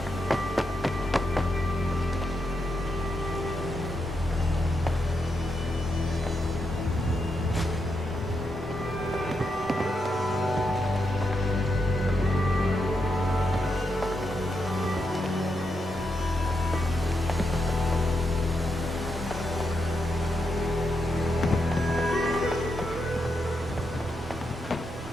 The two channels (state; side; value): normal; both; correlation 0.83